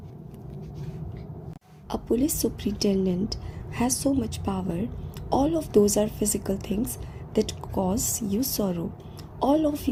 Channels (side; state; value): both; identical; correlation 1.00